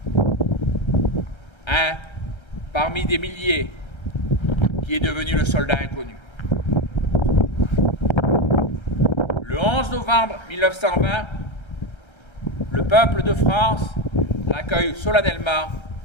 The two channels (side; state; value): right; late; 1.3 ms